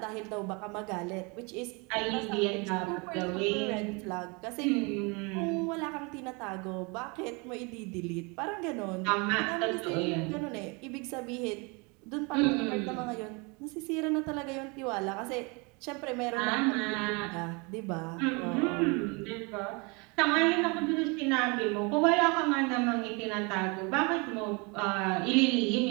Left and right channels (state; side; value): quieter; left; 29.7 dB